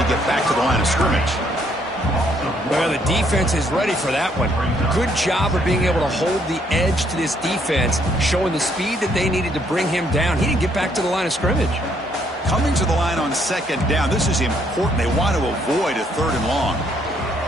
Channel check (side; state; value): both; normal; correlation 0.69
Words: get back to the line of scrimmage. Well, the defense is ready for that one. Good job of being able to hold the edge to this defense, showing the speed that they needed to bring him down. He didn't get back to the line of scrimmage. Coming to the line on second down. This is important. They want to avoid a third and long.